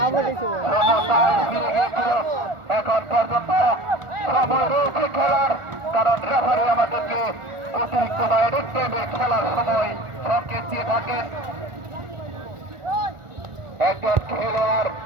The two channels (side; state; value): left; late; 1.4 ms